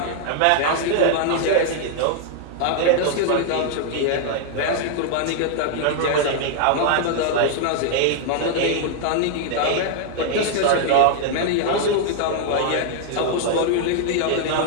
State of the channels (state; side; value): different; both; correlation 0.00